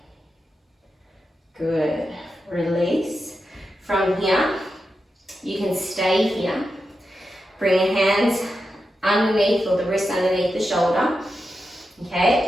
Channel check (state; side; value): normal; both; correlation 0.89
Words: Good. Release. From here, you can stay here. Bring your hands underneath or the wrist underneath the shoulder. Okay,